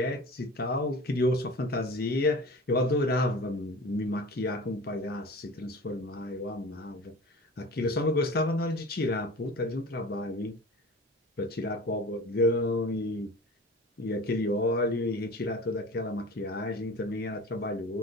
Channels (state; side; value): normal; both; correlation 0.37